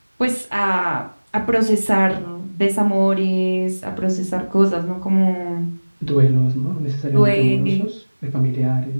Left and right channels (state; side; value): inverted; both; correlation -1.00